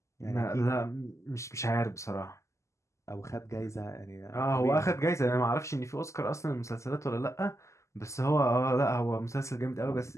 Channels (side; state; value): right; late; 0.14 ms